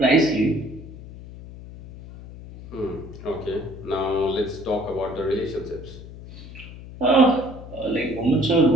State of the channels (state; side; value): noise; left; hum, 15 dB below the sound